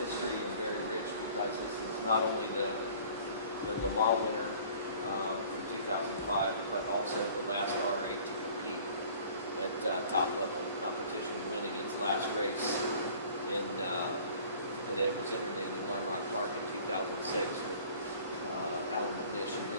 and very rich because this is not only the Le Mans winner from 2005, but also the last R8 to compete at top level competition, winning its last race that it was entered in Lime Rock Park in 2006 with Alan McNish and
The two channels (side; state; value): both; inverted; correlation -0.49